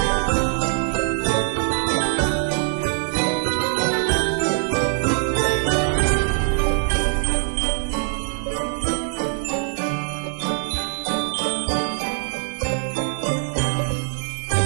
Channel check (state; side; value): silent; left; digital silence